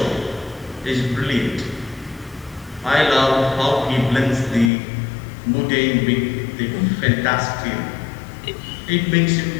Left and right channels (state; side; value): drops out; right; at 4.7 s